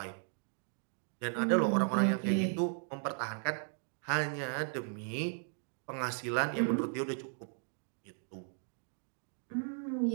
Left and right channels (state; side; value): silent; left; 54 dB below the other